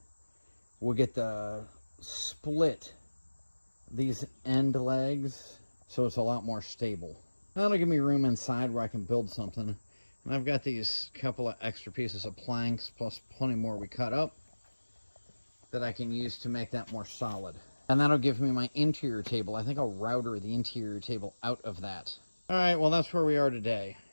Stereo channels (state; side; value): inverted; both; correlation -1.00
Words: we'll get the split these end legs so it's a lot more stable. That'll give me room inside where I can build something. And I've got these couple of extra pieces of planks plus plenty more we cut up that I can use to make that more solid. And that'll give me my interior table. I think I'll router the interior table out of that. All right, well, that's where we are today.